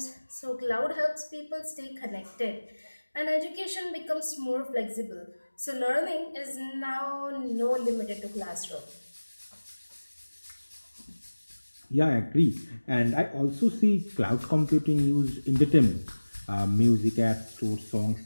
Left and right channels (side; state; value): both; inverted; correlation -1.00